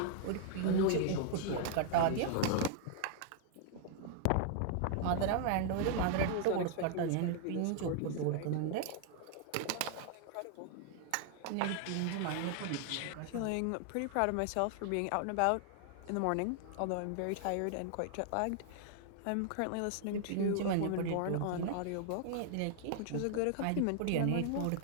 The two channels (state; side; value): different; both; correlation 0.00